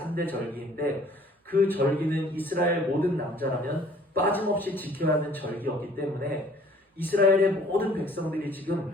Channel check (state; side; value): normal; both; correlation 0.55